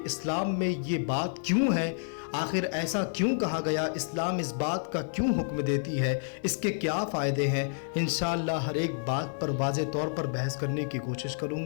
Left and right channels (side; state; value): right; silent; 57 dB below the other